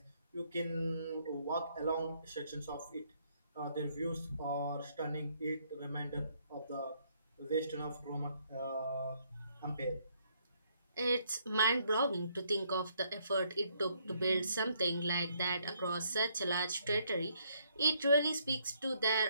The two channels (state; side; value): inverted; both; correlation -0.70